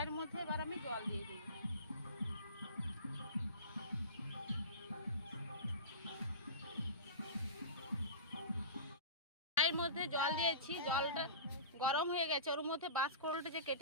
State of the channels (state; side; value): inverted; both; correlation -0.32